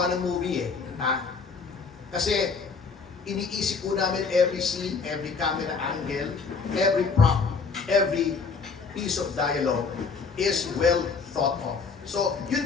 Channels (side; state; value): right; quieter; 5.0 dB